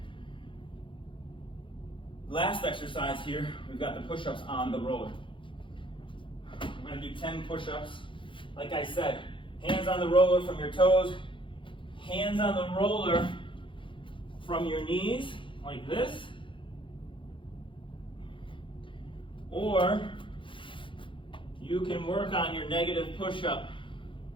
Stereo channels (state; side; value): late; right; 0.25 ms